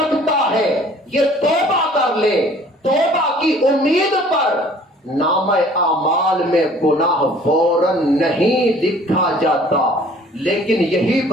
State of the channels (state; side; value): normal; both; correlation 0.53